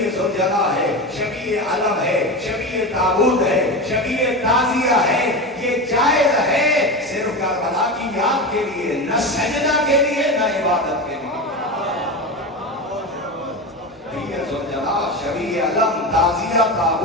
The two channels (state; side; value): normal; both; correlation 0.22